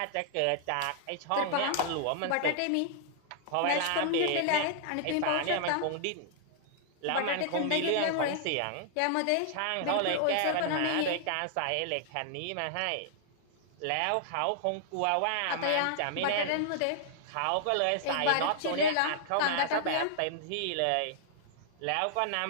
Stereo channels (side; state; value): both; different; correlation -0.01